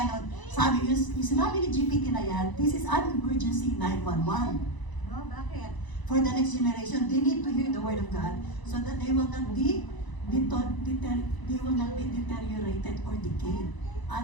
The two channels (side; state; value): right; late; 1.0 ms